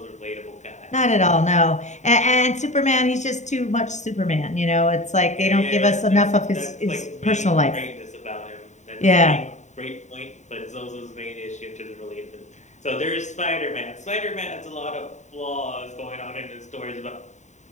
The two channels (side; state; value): right; late; 0.34 ms